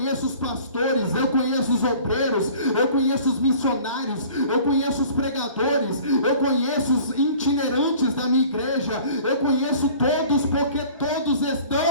os pastores, eu conheço os obreiros, eu conheço os missionários, eu conheço os pregadores, eu conheço os itinerantes da minha igreja, eu conheço todos, porque todos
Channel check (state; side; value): inverted; both; correlation -0.48